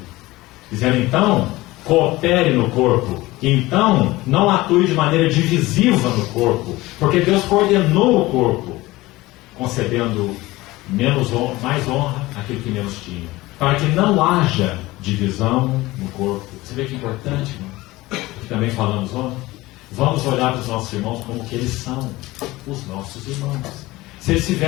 Dizendo então coopere no corpo. Então, não atue de maneira divisiva no corpo, porque Deus coordenou o corpo, concedendo mais honra àquele que menos tinha, para que não haja divisão no corpo. Você vê que importante, irmão? Que também falamos ontem. Vamos olhar para os nossos irmãos como que eles são, os nossos irmãos. Se ele se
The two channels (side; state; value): right; quieter; 19.3 dB